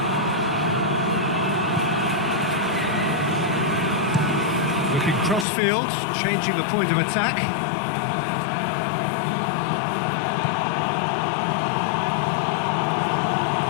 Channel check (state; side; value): drops out; right; at 5.5 s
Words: Looking cross-field, changing the point of attack.